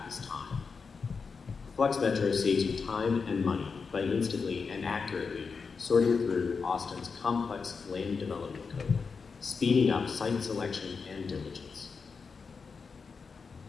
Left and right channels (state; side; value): quieter; right; 5.2 dB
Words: is time. Flex Metro saves you time and money by instantly and accurately sorting through Austin's complex land development code, speeding up site selection and diligence.